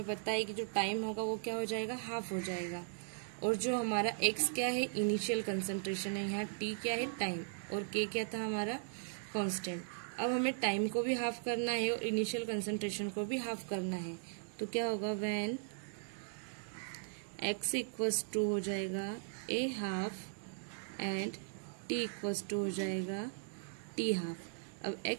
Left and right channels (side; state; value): left; silent; digital silence